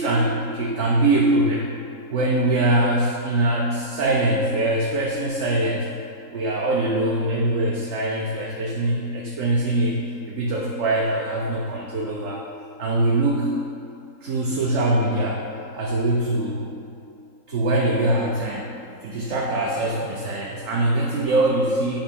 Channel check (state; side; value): late; right; 3.8 ms